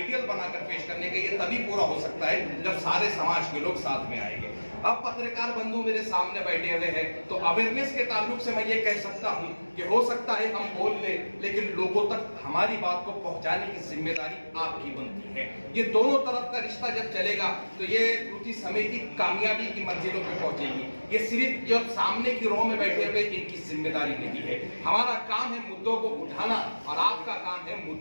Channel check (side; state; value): both; inverted; correlation -1.00